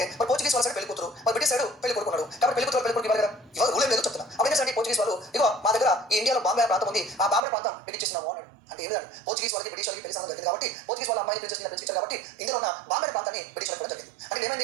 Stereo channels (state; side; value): drops out; left; at 7.5 s